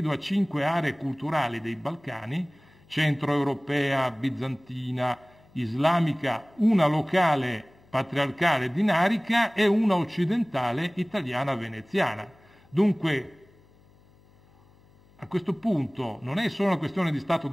5 aree culturali dei Balcani: centroeuropea, bizantina, islamica, una locale patriarcale dinarica e una occidentale italiana veneziana. Dunque, a questo punto non è solo una questione di Stato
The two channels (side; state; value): left; noise; hum, 28 dB below the sound